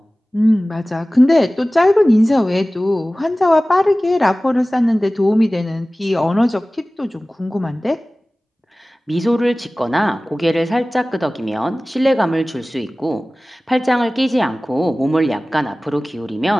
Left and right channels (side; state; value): both; normal; correlation 0.98